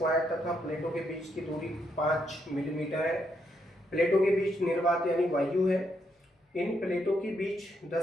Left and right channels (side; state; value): both; normal; correlation 0.77